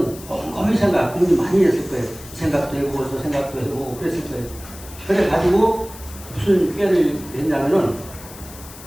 곰곰이 고민 많이 했을 거예요. 생각도 해보고 저 생각도 해보고 그랬을 거예요. 그래가지고 무슨 깨를 했냐면은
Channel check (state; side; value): noise; left; hiss, 17 dB below the sound